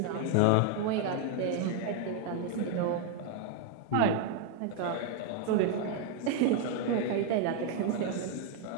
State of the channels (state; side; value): different; both; correlation 0.00